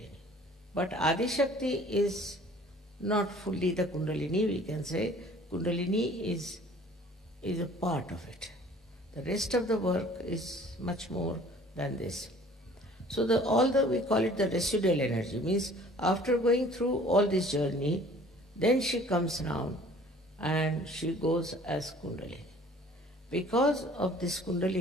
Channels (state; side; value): normal; both; correlation 0.51